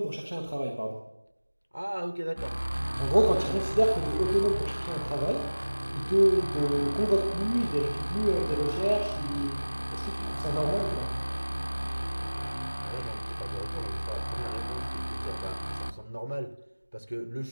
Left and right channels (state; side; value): inverted; both; correlation -1.00